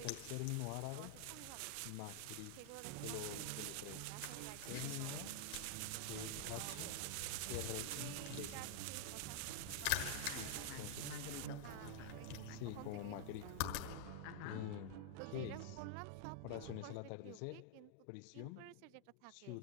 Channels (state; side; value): different; both; correlation 0.00